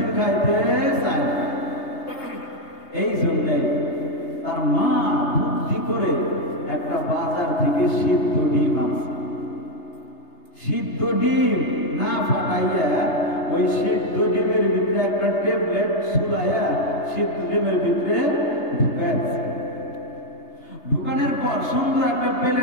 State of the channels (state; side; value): late; right; 3.3 ms